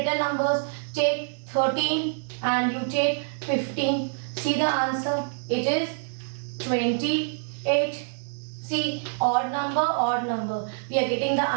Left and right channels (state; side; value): silent; left; 61 dB below the other